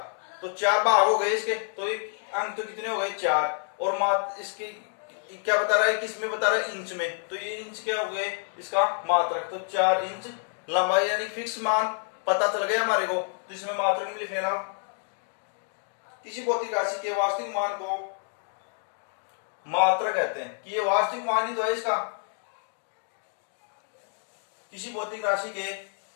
तो 4 भाग हो गए इसके। तो अंक तो कितने हो गए, 4। और मात्र इसकी क्या बता रहा है, किस में बता रहा है, इंच में। तो ये इंच क्या हो गए इसका मात्रक। तो 4 इंच लंबाई, यानी फिक्स मान पता चल गया हमारे को। तो इसमें मात्रक में लिख लेना, किसी भौतिक राशि के वास्तविक मान को मात्रक कहते हैं। कि ये वास्तविक मान ही तो है इसका, किसी भौतिक राशि के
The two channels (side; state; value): right; silent; 59 dB below the other